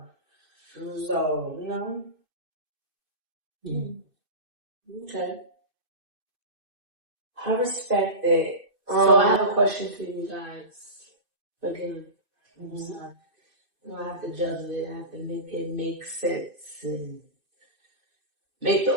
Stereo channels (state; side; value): late; left; 2.6 ms